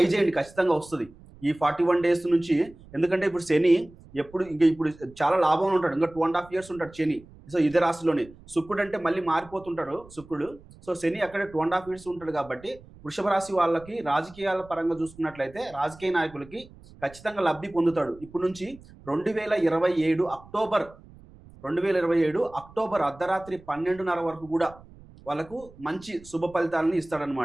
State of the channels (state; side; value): noise; right; rumble, 22 dB below the sound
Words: చేయండి ఖచ్చితంగా వస్తది. ఈ 41 డేస్ నుంచి ఎందుకంటే ఇప్పుడు శని ఇప్పుడు చాలా లాభంలో ఉంటాడు. ఇంకా 2 ½ ఇయర్స్ ఉంటాడు శని. సో, ఇదే రాశిలోనే. శుక్రుడంటే మళ్ళీ మారిపోతుంటాడు శుక్రుడు. సో, శని అక్కడే 2 ½ ఇయర్స్ ఉంటాడు కాబట్టి, వృషభ రాశి వాళ్ళకి రాజకీయాల పరంగా చూసుకున్నట్లయితే, రాజకీయ నాయకులకి ఖచ్చితంగా లబ్ధి పొందుతాడు. ఇప్పటి నుంచి 2027 అక్టోబర్ 2027 అక్టోబర్ అర్ధరాత్రి 12:30 వరకు గూడా వాళ్ళకు మంచి శుభ ఫలితాలను